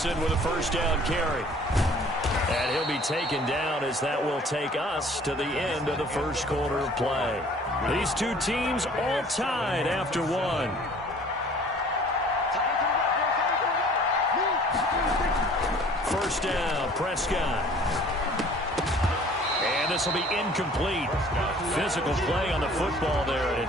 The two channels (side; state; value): both; normal; correlation 0.52